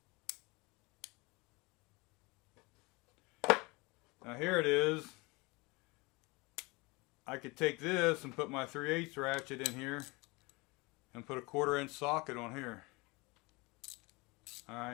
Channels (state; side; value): quieter; right; 25.6 dB